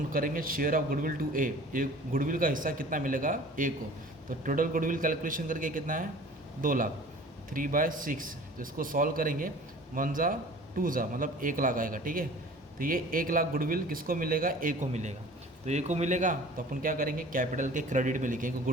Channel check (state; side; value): normal; both; correlation 0.45